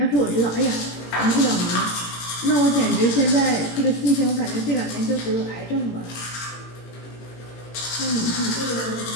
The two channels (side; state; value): right; late; 18 ms